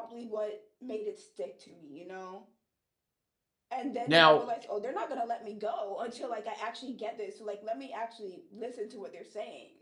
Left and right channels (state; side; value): identical; both; correlation 1.00